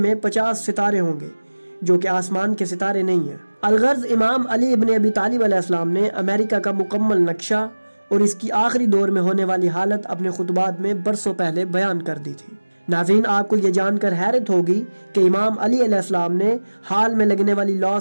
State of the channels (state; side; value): inverted; both; correlation -1.00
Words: 50 ستارے ہوں گے جو کہ آسمان کے ستارے نہیں ہیں۔ الغرض امام علی ابن ابی طالب علیہ السلام نے امریکہ کا مکمل نقشہ اور اس کی آخری دور میں ہونے والی حالت اپنے خطبات میں برسوں پہلے بیان کر دی تھی۔ ناظرین، آپ کو یہ جان کر حیرت ہوگی کہ امام علی علیہ السلام نے حال میں لگنے والی